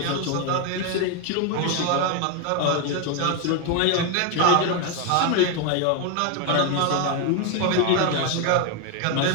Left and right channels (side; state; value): both; different; correlation 0.01